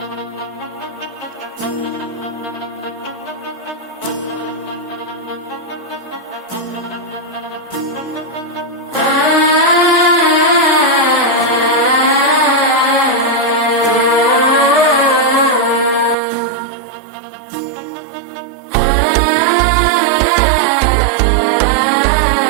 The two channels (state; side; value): drops out; left; at 16.2 s